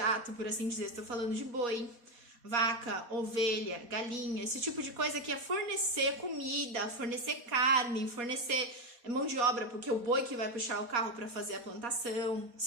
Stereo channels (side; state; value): left; late; 4.2 ms